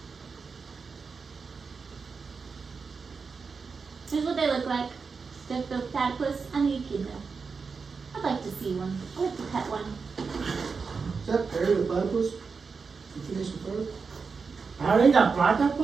Here's what they look like. The platypus and the echidna. I'd like to see one. I'd like to pet one. Is that Perry the platypus? You finished the first? How they got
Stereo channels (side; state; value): left; quieter; 5.0 dB